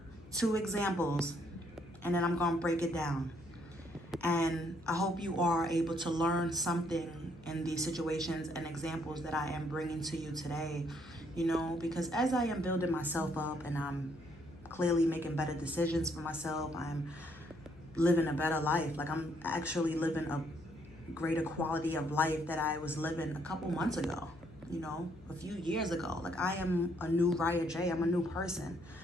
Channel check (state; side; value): noise; left; hum, 21 dB below the sound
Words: two examples, and then I'm going to break it down. And I hope you are able to learn something in these situations and examples that I am bringing to you today. You know, because as I am building myself up and I'm clearly making better decisions for myself, I'm living a better life. Like, I'm actually living a greater quality of life that I was living a couple months ago, you know, a few years ago. Like, I am a new Raya J. I'm a new person,